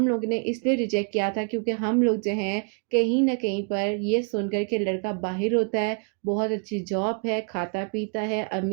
लोग ने इसलिए रिजेक्ट किया था क्योंकि हम लोग जो हैं कहीं ना कहीं पर ये सुनकर के लड़का बाहर होता है, बहुत अच्छी जॉब है, खाता पीता है,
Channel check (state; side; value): quieter; left; 38.4 dB